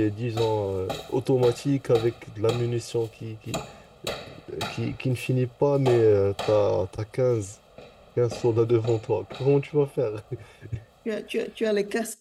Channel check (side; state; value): both; identical; correlation 1.00